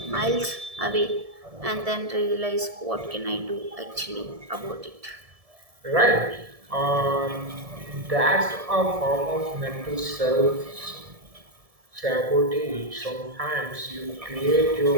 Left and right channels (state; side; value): late; left; 1.7 ms